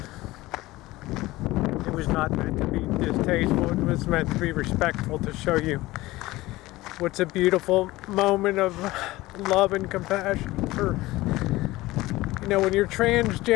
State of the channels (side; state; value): right; quieter; 18.7 dB